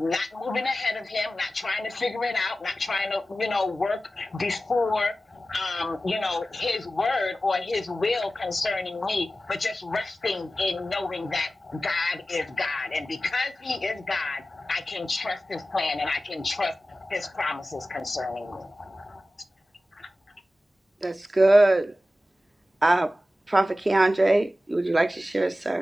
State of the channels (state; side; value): normal; both; correlation 0.95